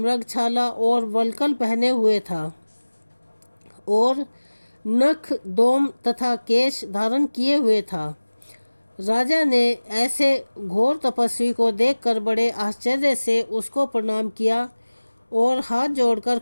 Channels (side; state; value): both; inverted; correlation -1.00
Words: और वल्कल पहने हुए था और नख, दोम तथा केश धारण किए हुए था। राजा ने ऐसे घोर तपस्वी को देखकर बड़े आश्चर्य से उसको प्रणाम किया और हाथ जोड़कर